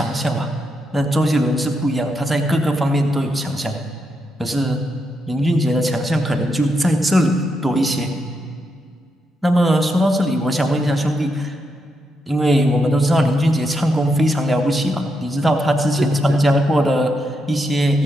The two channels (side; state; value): both; normal; correlation 0.82